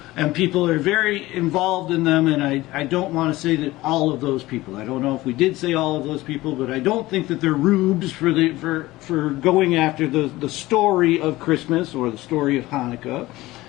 And people are very involved in them, and I don't want to say that all of those people. I don't know if we did say all of those people, but I don't think that they're rubes for going after the story of Christmas or the story of Hanukkah,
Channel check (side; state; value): right; quieter; 18.3 dB